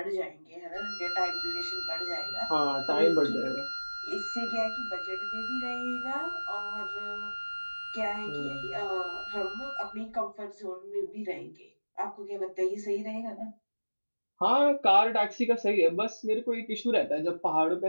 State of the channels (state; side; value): inverted; both; correlation -1.00